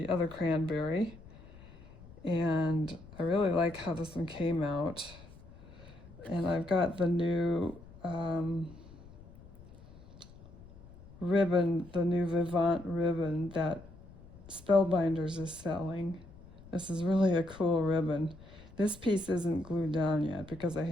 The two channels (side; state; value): left; noise; rumble, 20 dB below the sound